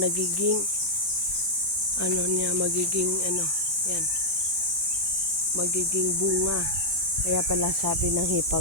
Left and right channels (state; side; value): normal; both; correlation -0.06